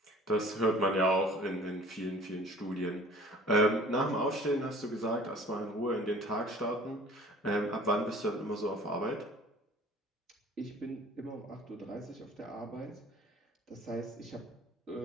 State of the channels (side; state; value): both; normal; correlation 0.49